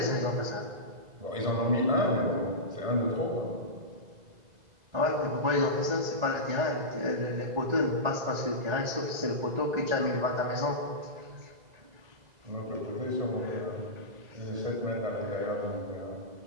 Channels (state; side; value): late; left; 2.0 ms